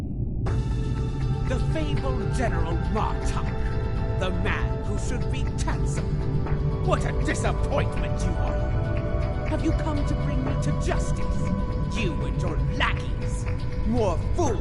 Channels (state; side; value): identical; both; correlation 1.00